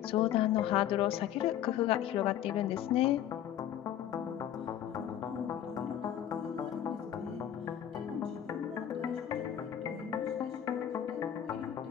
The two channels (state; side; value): quieter; right; 10.6 dB